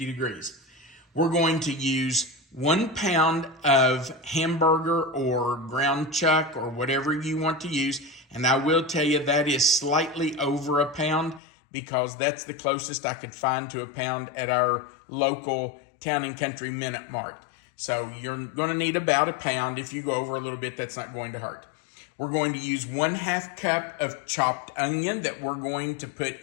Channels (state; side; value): drops out; right; at 11.4 s